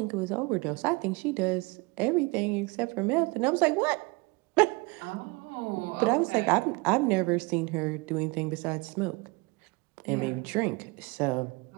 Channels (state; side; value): quieter; left; 26.8 dB